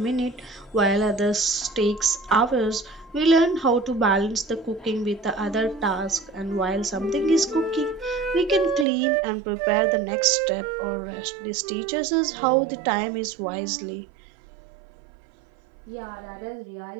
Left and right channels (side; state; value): left; drops out; at 8.8 s